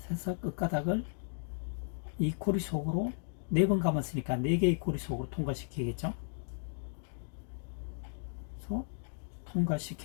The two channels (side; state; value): right; silent; digital silence